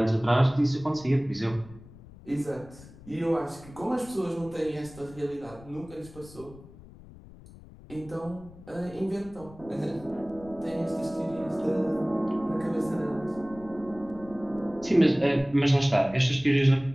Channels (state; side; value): noise; left; rumble, 19 dB below the sound